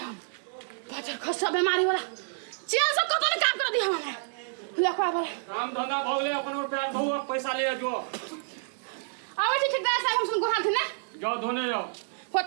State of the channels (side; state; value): left; silent; digital silence